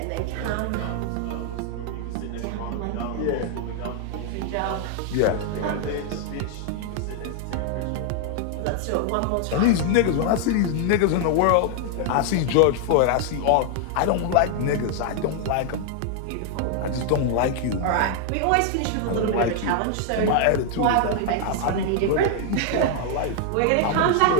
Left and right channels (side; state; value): both; different; correlation 0.00